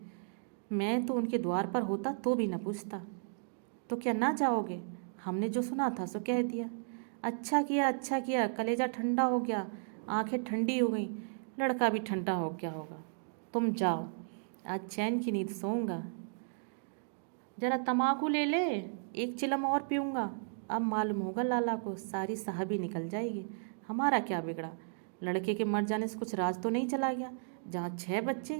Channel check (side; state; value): left; silent; digital silence